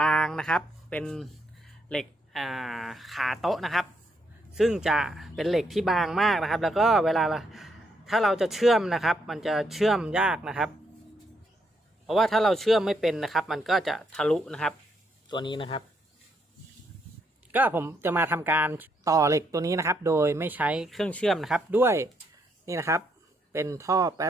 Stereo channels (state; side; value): normal; both; correlation 0.76